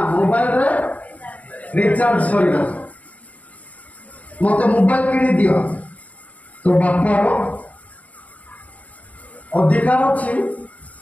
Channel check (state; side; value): late; right; 0.070 ms